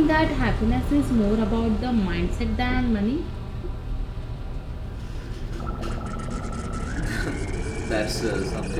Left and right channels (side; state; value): both; identical; correlation 1.00